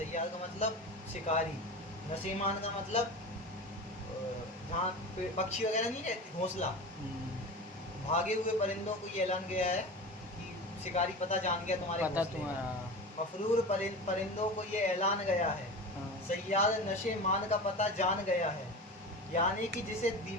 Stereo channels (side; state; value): both; normal; correlation 0.30